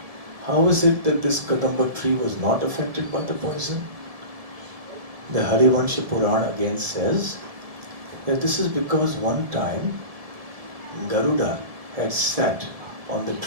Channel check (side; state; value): left; late; 1.7 ms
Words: How is it that this Kadamba tree was not affected by the poison? The Harivansha Purana again says that this is because one time Garuda had sat on the